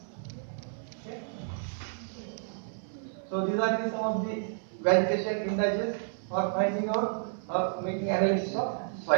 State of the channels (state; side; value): silent; left; 57 dB below the other